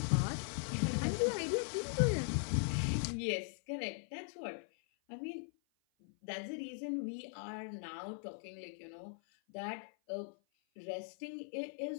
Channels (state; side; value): silent; right; 51 dB below the other